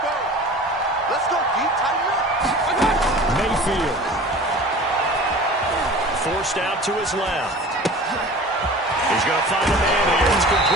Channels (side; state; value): both; normal; correlation 0.40